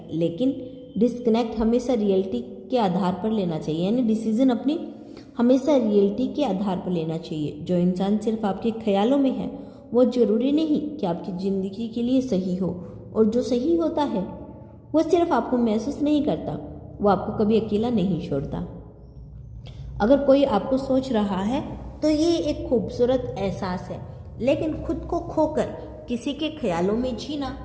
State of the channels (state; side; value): identical; both; correlation 1.00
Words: लेकिन डिस्कनेक्ट हमेशा रियलिटी के आधार पर लेना चाहिए, यानी डिसीजन अपनी हमेशा रियलिटी के आधार पर लेना चाहिए। जो इंसान सिर्फ आपके ख्यालों में है वो जरूरी नहीं कि आपकी ज़िंदगी के लिए सही हो, और जो सही होता है वो सिर्फ आपको महसूस नहीं करता, वो आपको कभी अकेला नहीं छोड़ता। अगर कोई आपको सोच रहा है तो ये एक खूबसूरत एहसास है, लेकिन खुद को खोकर किसी के ख्यालों में जीना,